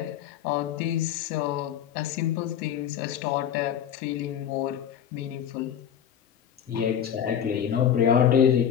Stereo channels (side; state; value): right; quieter; 9.1 dB